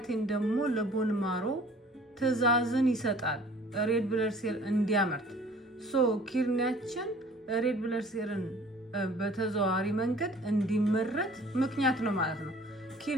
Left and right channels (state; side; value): normal; both; correlation 0.51